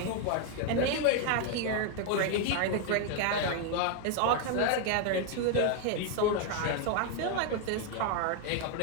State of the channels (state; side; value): different; both; correlation 0.01